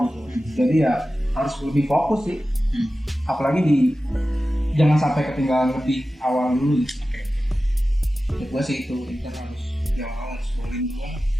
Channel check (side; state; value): both; normal; correlation 0.94